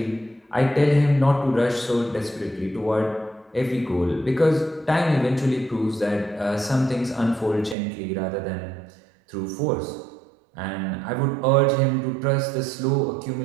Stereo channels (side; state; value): left; drops out; at 7.8 s